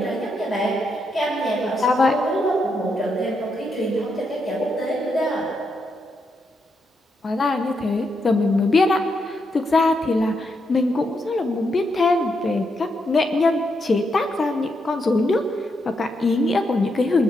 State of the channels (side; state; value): both; normal; correlation 0.81